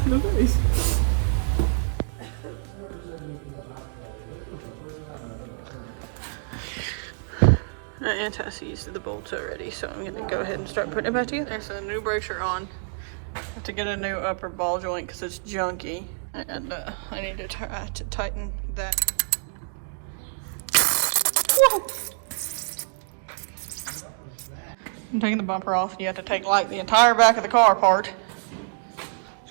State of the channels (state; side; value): silent; left; digital silence